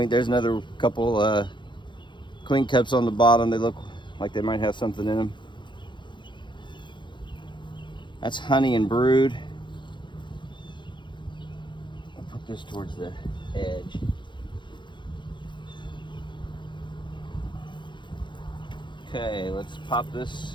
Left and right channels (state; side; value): late; right; 0.23 ms